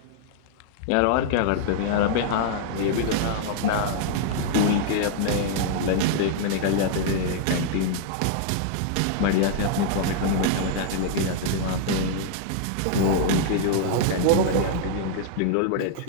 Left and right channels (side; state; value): both; different; correlation -0.01